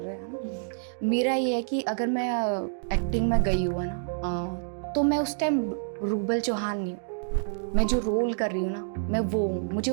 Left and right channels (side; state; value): left; silent; digital silence